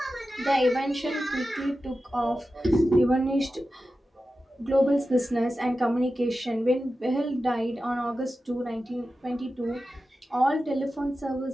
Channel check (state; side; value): normal; both; correlation 0.93